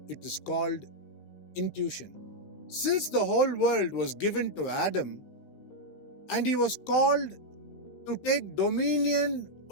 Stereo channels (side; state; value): right; late; 16 ms